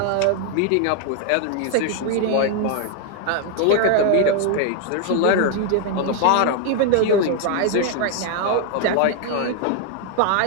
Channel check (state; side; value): different; both; correlation 0.00